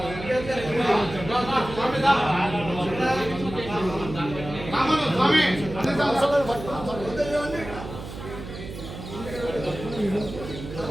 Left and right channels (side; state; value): right; noise; hum, 11 dB below the sound